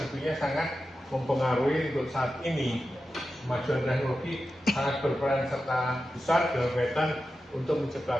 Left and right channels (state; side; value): normal; both; correlation 0.91